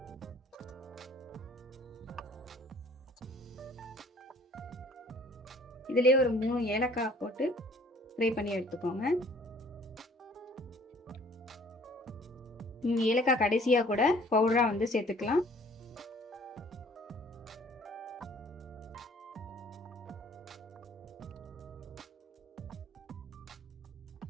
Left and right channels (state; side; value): normal; both; correlation 0.55